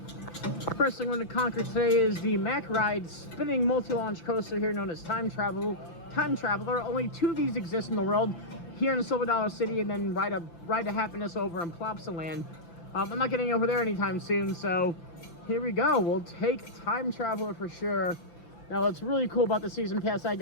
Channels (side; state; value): right; late; 5.9 ms